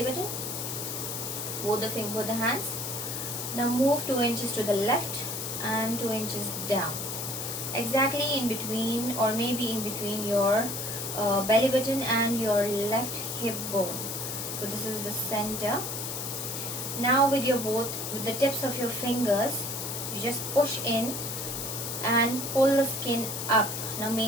button, both the hands. Now move 2 inches to the left and 2 inches down, exactly in between, or maybe in between your belly button and your left hip bone. So this is the center. Now with the tips of your fingers, you just push in and pull the skin up. Now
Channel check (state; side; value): noise; left; hiss, 4 dB below the sound